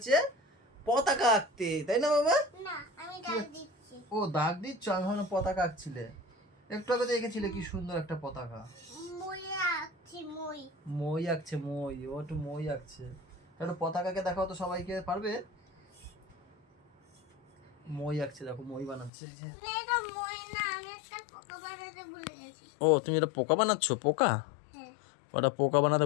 পতাকা আঁকতে, তাই না বাবা? না আমি ডাক দিচ্ছি। ও দাগ দিচ্ছ, আমি ভাবলাম পতাকা আঁকছিলে। একটু আগে দেখেছিলে কি সুন্দর একটা পতাকা। মই আছি মই। মই আঁকছে, মই, ও একটু মই আঁকছে। একটু পতাকাকে দেখাও তো সবাইকে, পারবে? মই আঁকছে দেখো, মই বানাচ্ছে এই যে। না এটা মই না, আমি একটা পোকা বানাতে ভুলে গেছি। ও তুমি এটা পোকা বানাচ্ছ? পোকা? হ্যাঁ ওটা পোকা বানাতে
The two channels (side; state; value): right; drops out; at 19.1 s